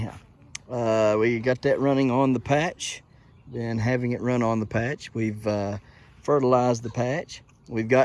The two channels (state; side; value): identical; both; correlation 1.00